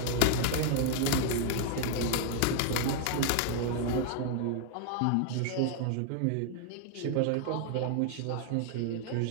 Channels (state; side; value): different; both; correlation 0.00